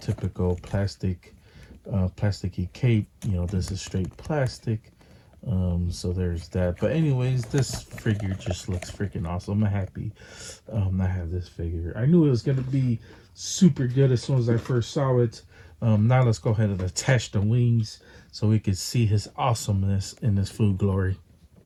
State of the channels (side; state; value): both; identical; correlation 1.00